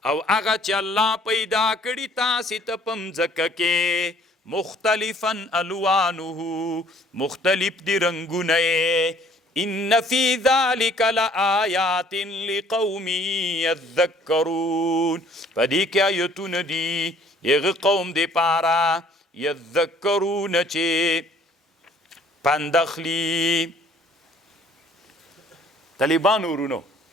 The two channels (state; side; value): normal; both; correlation 0.58